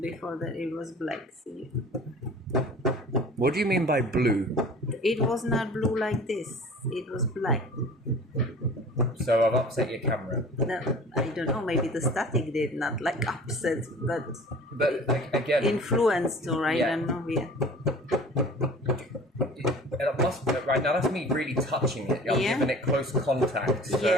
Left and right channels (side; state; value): both; normal; correlation 0.44